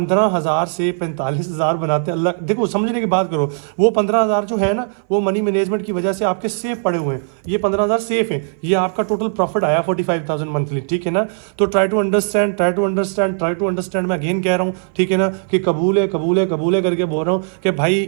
से 45,000 बनाते हैं, अल्लाह देखो समझने की बात करो, वो 15,000 जो है ना वो मनी मैनेजमेंट की वजह से आपके सेफ पड़े हुए हैं, ये 15,000 सेफ है, ये आपका टोटल प्रॉफिट आया 45,000 मंथली, ठीक है ना। तो ट्राई टू अंडरस्टैंड मैं अगेन कह रहा हूँ, ठीक है ना, कि कबूल है करके बोल रहा हूँ कि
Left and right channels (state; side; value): silent; left; 59 dB below the other